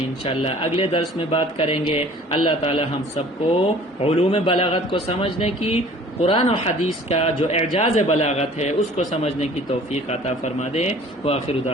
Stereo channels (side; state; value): both; normal; correlation 0.50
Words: اگلے درس میں بات کریں گے۔ اللہ تعالی ہم سب کو علوم بلاغت کو سمجھنے کی، قرآن و حدیث کا جو اعجاز بلاغت ہے اس کو سمجھنے کی توفیق عطا فرما دے۔ وآخر